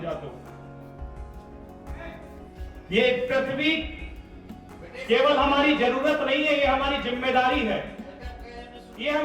तो। ये पृथ्वी केवल हमारी जरूरत नहीं है, ये हमारी जिम्मेदारी है। ये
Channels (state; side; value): identical; both; correlation 1.00